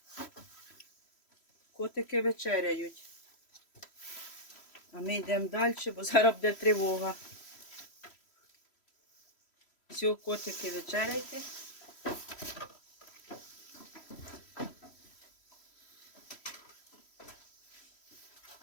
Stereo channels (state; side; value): late; right; 3.1 ms